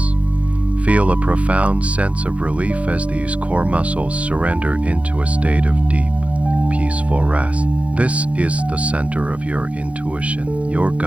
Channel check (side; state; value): left; late; 0.064 ms